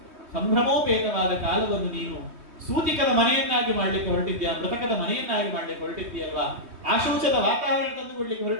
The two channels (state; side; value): late; left; 3.2 ms